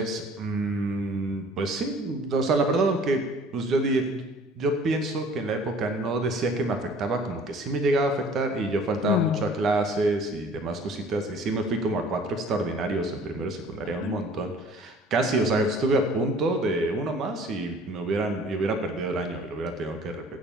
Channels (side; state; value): both; normal; correlation 0.51